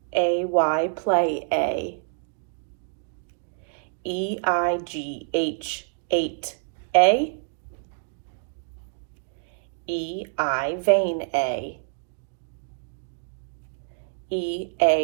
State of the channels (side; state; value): left; silent; digital silence